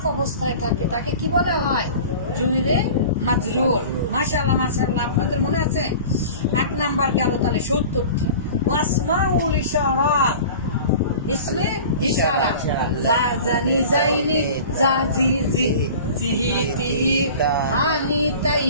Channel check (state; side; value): inverted; both; correlation -0.39